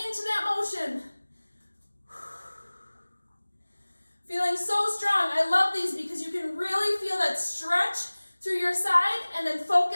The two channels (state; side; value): inverted; both; correlation -1.00